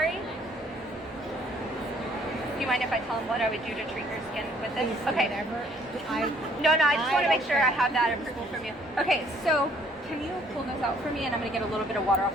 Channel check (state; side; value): normal; both; correlation 0.62